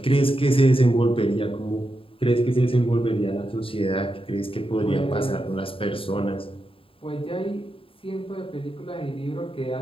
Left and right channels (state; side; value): late; right; 0.27 ms